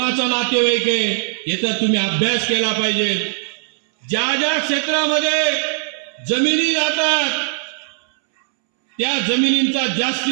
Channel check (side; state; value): left; silent; 67 dB below the other